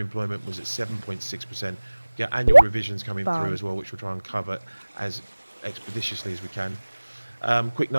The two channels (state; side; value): inverted; both; correlation -1.00